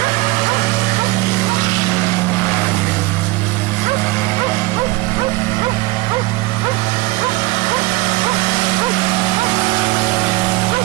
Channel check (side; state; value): left; quieter; 21.3 dB